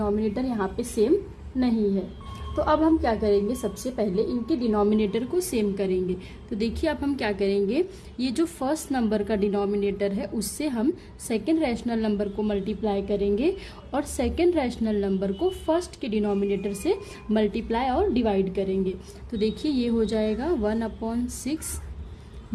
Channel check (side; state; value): both; identical; correlation 1.00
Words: यहाँ पे सेम नहीं है। तो अब हम क्या करेंगे, सबसे पहले इनके डिनोमिनेटर को सेम करेंगे। तो देखिए अब हम क्या करेंगे, ये जो फर्स्ट नंबर का डिनोमिनेटर है उससे हम सेकंड रैशनल नंबर को मल्टीप्लाई करेंगे और सेकंड रैशनल नंबर को फर्स्ट के डिनोमिनेटर से मल्टीप्लाई और डिवाइड करेंगे। तो देखिए ये हो जाएगा 1/6